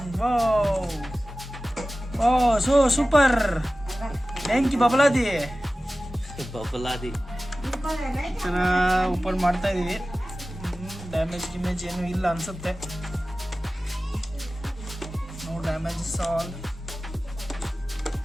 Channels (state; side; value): normal; both; correlation 0.96